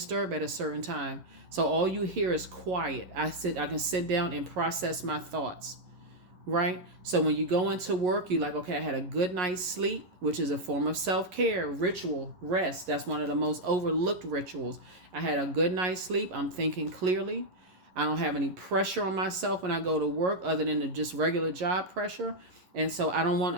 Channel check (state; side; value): late; left; 11 ms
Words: at a certain time. So all you hear is quiet. I can sit down and process my thoughts. Right? So when you go into work, you're like, okay, I had a good night's sleep, which is a form of self-care, ritual, rest. That's one of the most overlooked rituals. I had a good night's sleep. I'm thinking clearly. I don't have any pressure on myself when I go to work other than the just regular job pressure. And so I'm